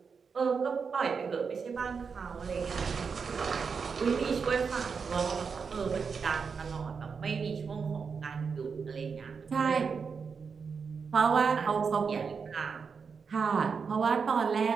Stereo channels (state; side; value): quieter; left; 5.7 dB